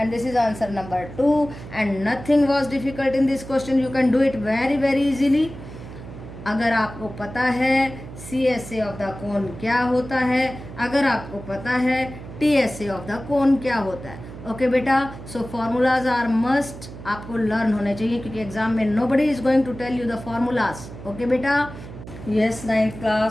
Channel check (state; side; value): noise; right; hum, 13 dB below the sound